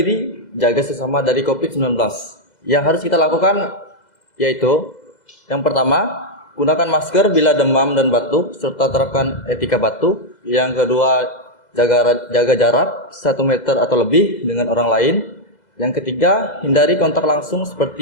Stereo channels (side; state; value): right; late; 2.0 ms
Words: jaga sesama dari COVID-19. Yang harus kita lakukan yaitu yang pertama, gunakan masker bila demam dan batuk serta terapkan etika batuk. Yang kedua, jaga jarak 1 meter atau lebih dengan orang lain. Yang ketiga, hindari kontak langsung